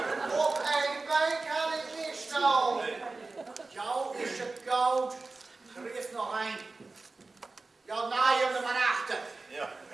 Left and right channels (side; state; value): left; quieter; 3.6 dB